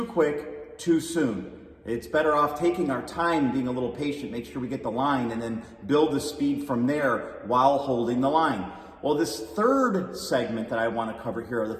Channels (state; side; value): identical; both; correlation 1.00